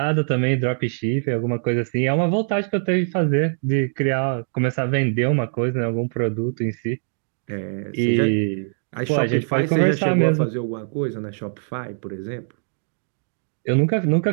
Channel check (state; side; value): silent; left; 64 dB below the other